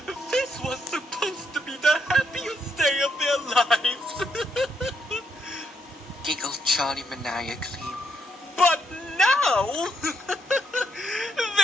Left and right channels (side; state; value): both; normal; correlation 0.77